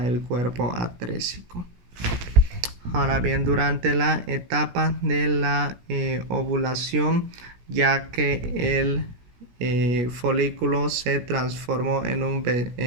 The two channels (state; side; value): late; left; 17 ms